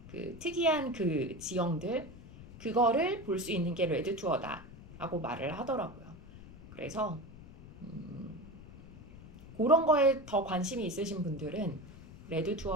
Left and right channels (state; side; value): noise; left; rumble, 17 dB below the sound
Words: 그 특이한 그 지형들, 그거를 볼 수 있는 게 레드 투어다라고 말을 하더라고요. 그래서 그런 거에 더 관심이 있으신 분들은 레드